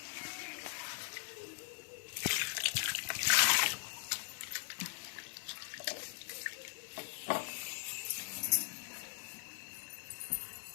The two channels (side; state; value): right; silent; 51 dB below the other